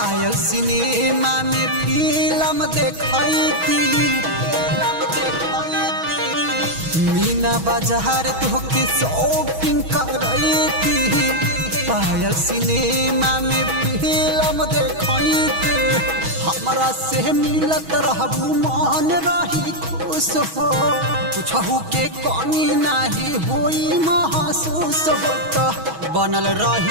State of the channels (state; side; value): late; left; 6.2 ms